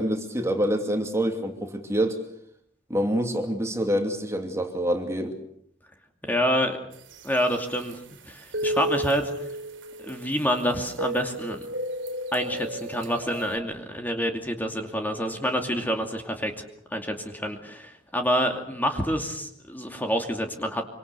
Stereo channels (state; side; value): normal; both; correlation 0.59